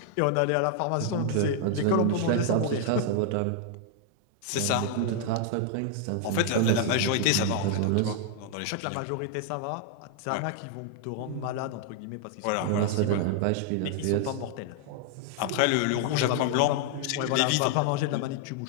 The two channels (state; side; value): different; both; correlation 0.00